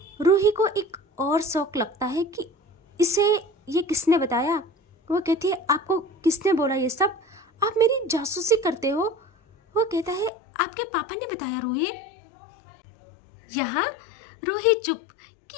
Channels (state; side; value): drops out; right; at 10.3 s